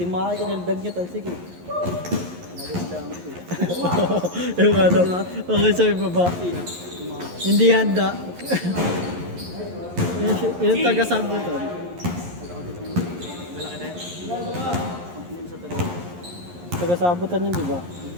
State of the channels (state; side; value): late; left; 11 ms